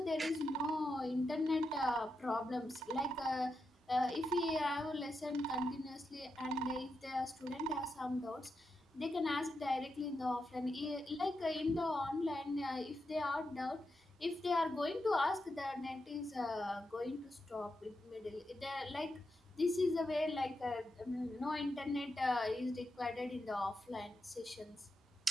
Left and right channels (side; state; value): both; normal; correlation 0.86